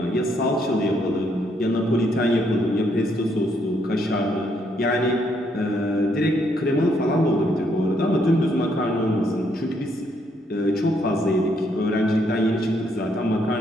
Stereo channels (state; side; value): normal; both; correlation 0.73